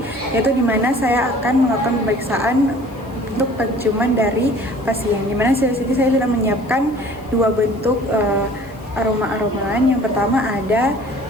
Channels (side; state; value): left; noise; hiss, 28 dB below the sound